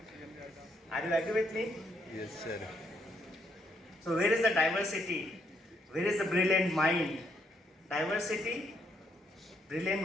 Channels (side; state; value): both; normal; correlation 0.74